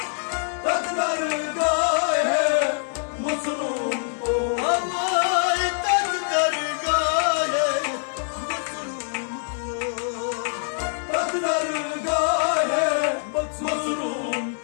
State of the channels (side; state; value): right; silent; 62 dB below the other